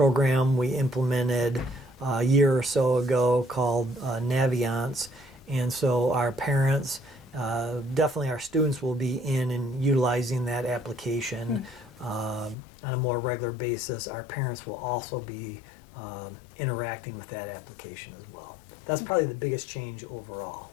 we implemented a year or so ago called Naviance. And so our parents, definitely our students, will be in and utilizing that application on a more regular basis. Our parents will also be interacting with that application as well. That's probably the biggest change overall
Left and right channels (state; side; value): drops out; right; at 12.6 s